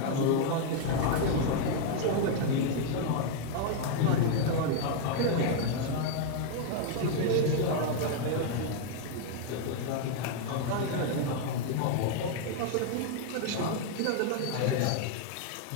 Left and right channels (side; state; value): both; different; correlation 0.00